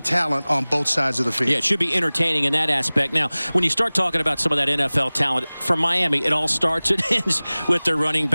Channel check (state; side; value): inverted; both; correlation -1.00